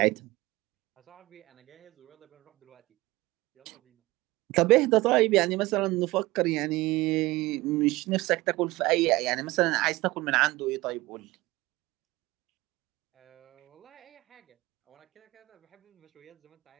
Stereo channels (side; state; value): left; quieter; 20.2 dB